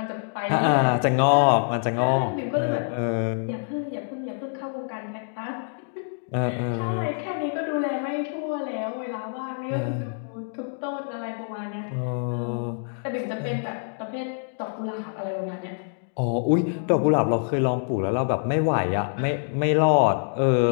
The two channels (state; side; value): silent; right; digital silence